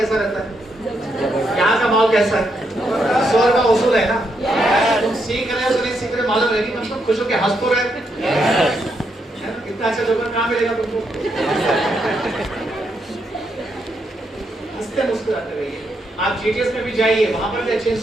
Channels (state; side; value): normal; both; correlation 0.79